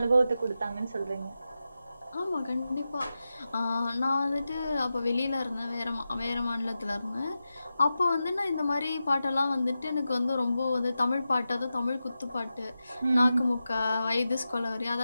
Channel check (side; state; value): both; inverted; correlation -0.92